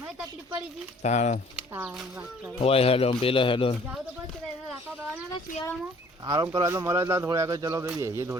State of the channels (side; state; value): both; normal; correlation 0.56